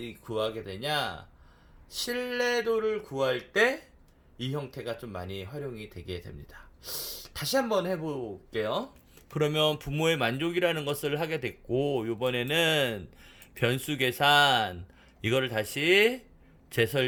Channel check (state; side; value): identical; both; correlation 1.00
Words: 구하게 되냐? 신뢰도를 구할 때 이 형태가 좀 많이 활용이 되게 됩니다. 다시 한번 해볼게요. 그러면 부모의 만족이라는 것을 하게 됐고, 요번에는 변수 계산, 이거를 다시